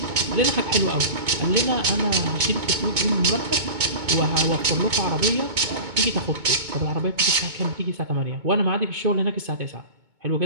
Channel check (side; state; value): left; late; 2.2 ms